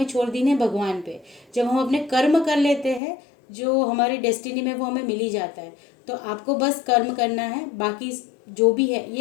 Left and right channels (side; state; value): right; drops out; at 3.0 s